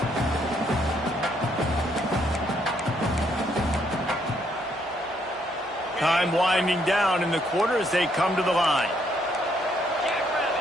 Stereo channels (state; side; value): normal; both; correlation 0.71